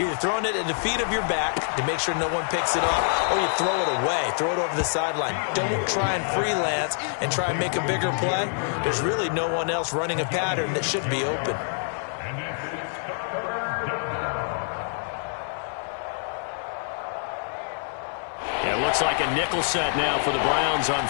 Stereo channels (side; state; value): right; silent; digital silence